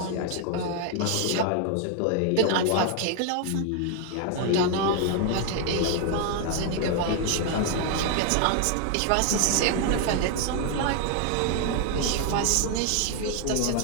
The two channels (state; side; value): different; both; correlation 0.00